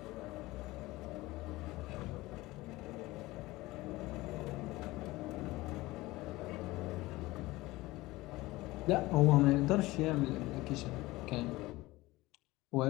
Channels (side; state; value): right; quieter; 19.6 dB